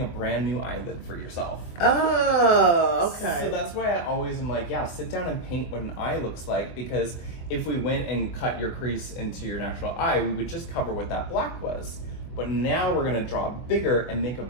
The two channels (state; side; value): late; right; 24 ms